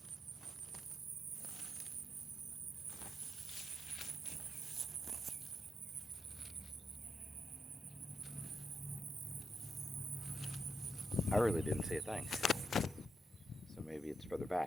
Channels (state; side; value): normal; both; correlation 0.85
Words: I really didn't see a thing. So maybe it's further